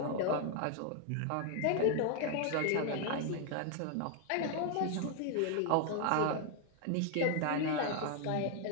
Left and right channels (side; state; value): both; different; correlation 0.00